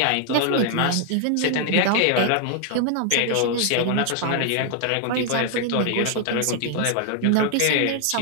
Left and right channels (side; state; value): both; different; correlation 0.00